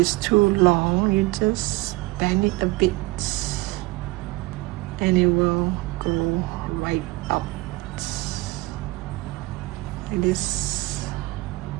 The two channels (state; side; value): quieter; left; 21.8 dB